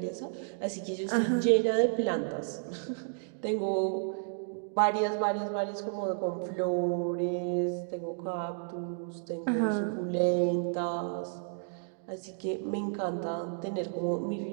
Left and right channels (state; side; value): silent; left; digital silence